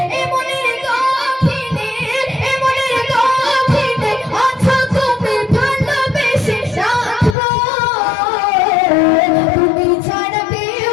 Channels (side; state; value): right; drops out; at 7.4 s